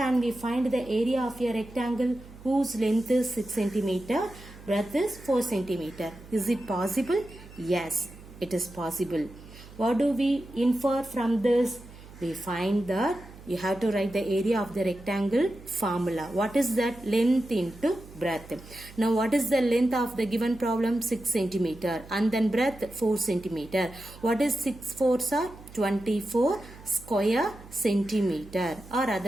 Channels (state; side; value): noise; right; hum, 19 dB below the sound